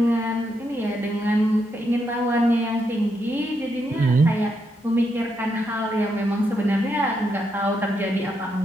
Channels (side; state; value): both; normal; correlation 0.80